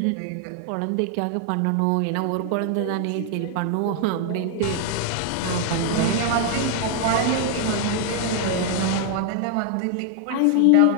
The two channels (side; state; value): both; different; correlation 0.00